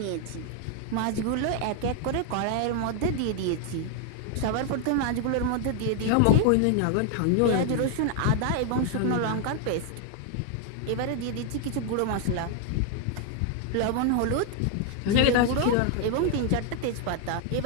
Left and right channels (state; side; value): different; both; correlation 0.00